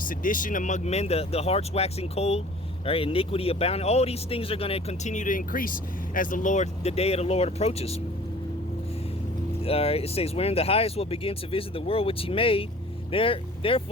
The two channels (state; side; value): normal; both; correlation 0.48